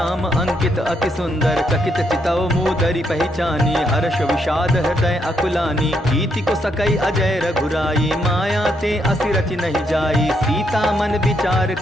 अंकित अति सुंदर। चकित चितौ मूदरि पहचानी हर्ष विषाद हृदय अकुलानी। कीति को सकई अजय रघुराई माया ते असि रचि नहीं जाई। सीता मन विचार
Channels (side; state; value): both; normal; correlation 0.76